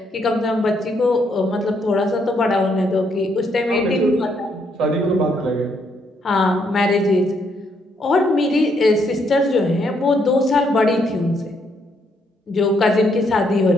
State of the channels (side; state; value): both; normal; correlation 0.73